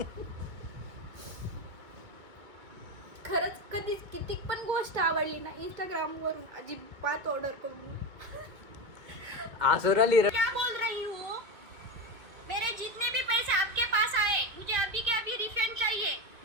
खरंच कधीच किती पण गोष्ट आवडली ना इंस्टाग्राम वरून अजिबात ऑर्डर करून. आसुराली क्या बोल रही हूँ? मेरे जितने भी पैसे आपके पास आए मुझे अभी के अभी रिफंड चाहिए.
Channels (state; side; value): late; left; 2.2 ms